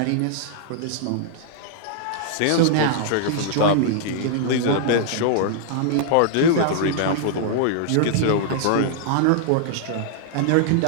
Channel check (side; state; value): both; different; correlation -0.01